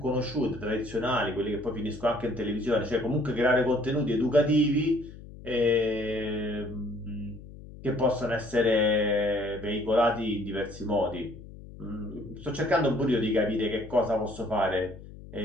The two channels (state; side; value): noise; left; hum, 16 dB below the sound